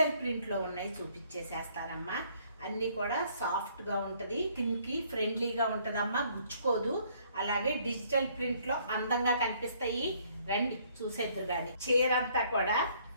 ప్రింట్లో ఉన్నాయి, చూపించేసేస్తానమ్మా. అన్నీ కూడా సాఫ్ట్గా ఉంటుంది, కిందకి ఫ్రెండ్లీగా ఉంటుందమ్మా, గుచ్చుకోదు. అలాగే డిజిటల్ ప్రింట్లో అందంగా కనిపిస్తాయి. రండి చూసేద్దరు. కానీ చీర అంతా కూడా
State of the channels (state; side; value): inverted; both; correlation -0.64